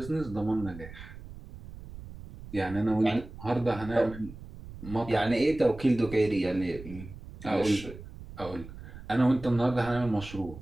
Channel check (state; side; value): noise; right; rumble, 14 dB below the sound